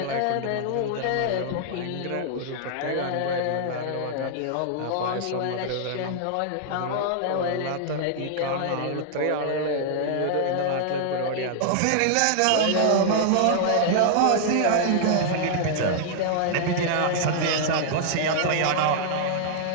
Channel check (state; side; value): different; both; correlation -0.01